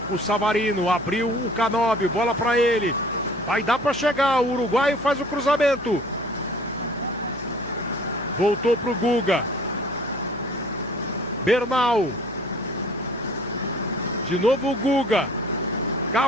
o Savarino, abriu o Canóbio, bola para ele. Vai dar para chegar, o uruguaio faz o cruzamento. Voltou para o Guga. Bernal. De novo o Guga.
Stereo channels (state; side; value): normal; both; correlation 0.50